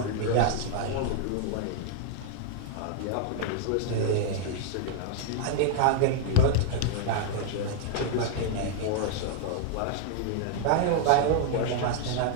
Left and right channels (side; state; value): both; different; correlation -0.01